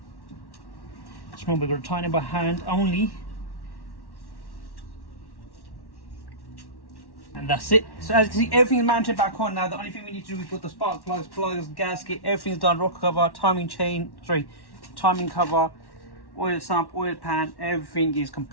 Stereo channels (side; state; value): right; late; 1.1 ms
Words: Just remember, we're going to tighten it by hand only. And that's it. So as you can see, everything is mounted back on now. The only thing we need to do is put the spark plugs, gasket, everything's done. Rocker cover, timing cover, oil sump, oil pan, everything is